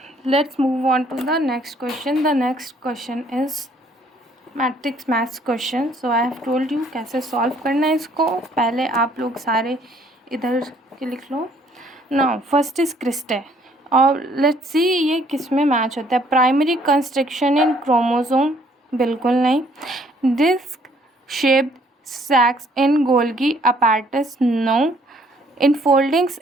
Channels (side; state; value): both; normal; correlation 0.63